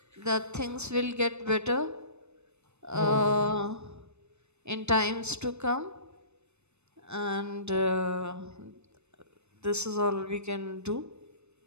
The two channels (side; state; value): left; late; 0.81 ms